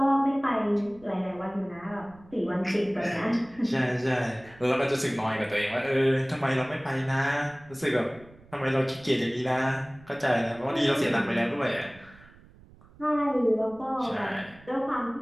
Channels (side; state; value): right; noise; rumble, 24 dB below the sound